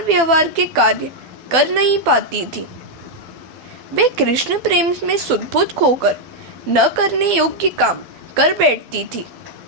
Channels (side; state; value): left; late; 12 ms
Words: व्यवहार के कार्य कर नहीं पाती थी। वे कृष्ण प्रेम में सुदबुद खोकर न करने योग्य काम कर बैठती थी।